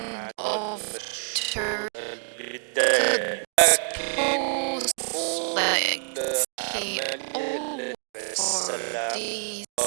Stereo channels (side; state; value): left; silent; digital silence